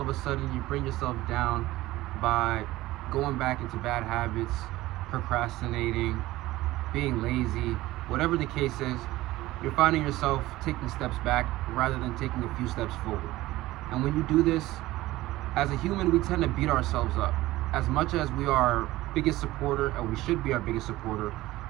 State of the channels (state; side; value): quieter; left; 17.4 dB